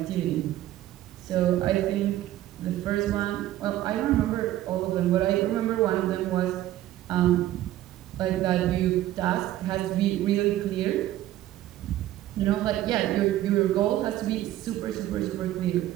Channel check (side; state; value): left; quieter; 14.0 dB